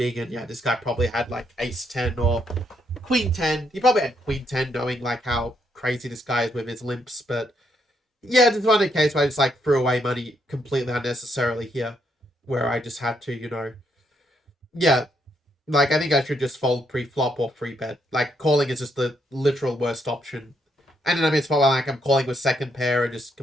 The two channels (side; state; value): both; normal; correlation 0.76